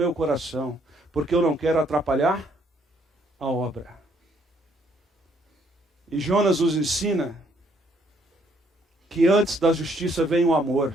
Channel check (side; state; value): both; normal; correlation 0.68